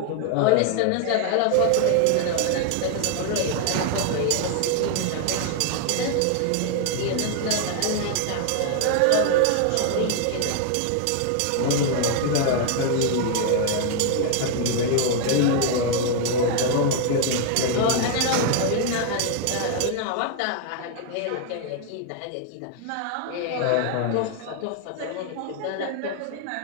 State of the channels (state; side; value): different; both; correlation 0.00